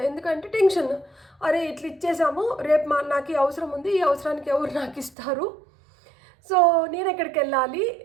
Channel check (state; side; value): drops out; left; at 5.2 s